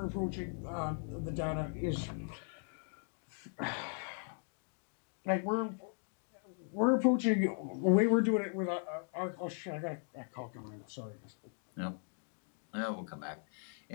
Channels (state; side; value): silent; right; 52 dB below the other